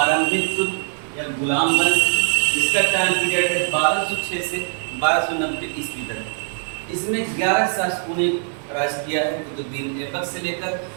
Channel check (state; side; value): silent; left; 62 dB below the other